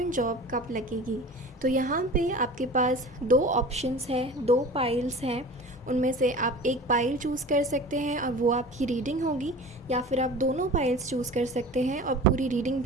जॉब कब लगेगी। तो यहाँ पे आपके पास दो ऑप्शंस हैं, दो पाइल्स हैं। उनमें से आप एक पाइल चूज़ कर सकते हैं और वो आपकी रीडिंग होगी, या फिर आप दोनों पाइल्स चूज़ कर सकते हैं और पूरी रीडिंग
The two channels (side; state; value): both; normal; correlation 0.38